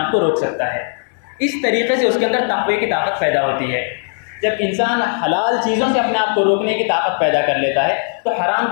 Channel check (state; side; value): silent; right; 59 dB below the other